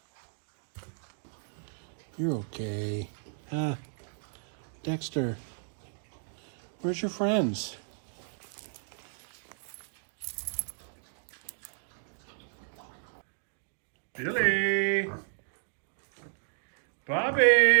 You're okay. Dexter, where's your friends? Billy!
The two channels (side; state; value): left; silent; 56 dB below the other